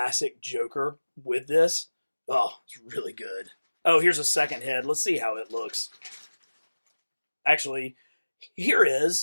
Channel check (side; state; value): both; inverted; correlation -1.00